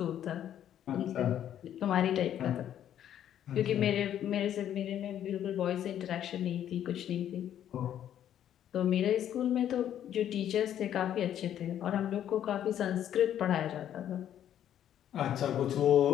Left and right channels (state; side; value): quieter; right; 10.6 dB